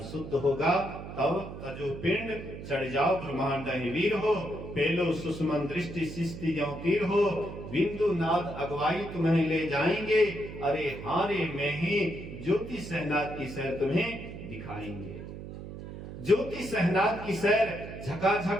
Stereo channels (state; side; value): noise; right; hum, 11 dB below the sound